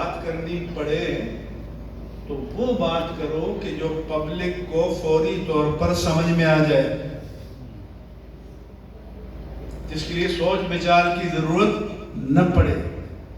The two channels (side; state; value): both; identical; correlation 1.00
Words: کرنی پڑے تو وہ بات کرو کہ جو پبلک کو فوری طور پر سمجھ میں آ جائے، جس کے لیے سوچ بچار کی ضرورت نہ پڑے۔